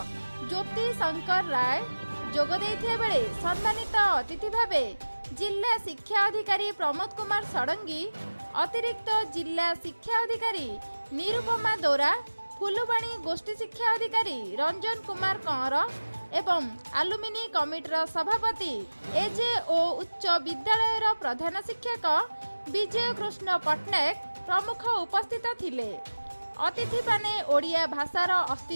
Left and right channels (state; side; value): inverted; both; correlation -1.00